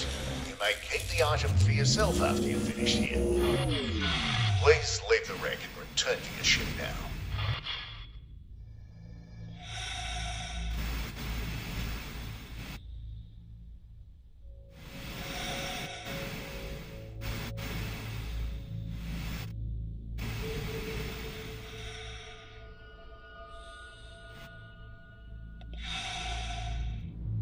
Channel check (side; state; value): both; identical; correlation 1.00